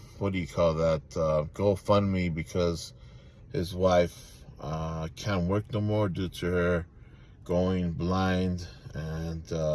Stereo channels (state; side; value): identical; both; correlation 1.00